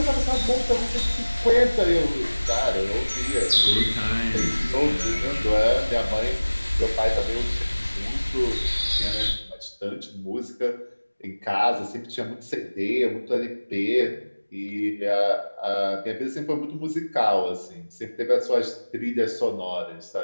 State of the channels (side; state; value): both; inverted; correlation -1.00